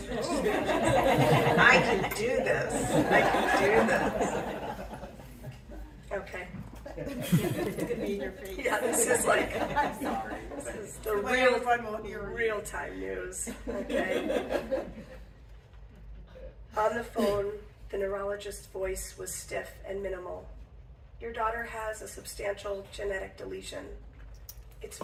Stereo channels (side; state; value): both; identical; correlation 1.00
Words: I can do this. Okay. It's gonna be in your face. Yeah, this is like, I'm sorry. this is the real time news. Okay. On the phone, the neurologist's voice was stiff and minimal. Your daughter has a substantial genetic deletion. It's